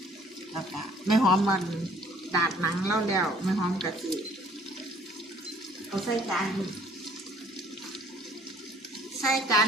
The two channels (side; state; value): both; normal; correlation 0.57